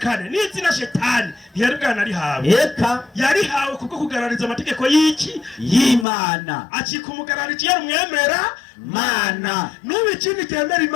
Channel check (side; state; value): right; drops out; at 6.1 s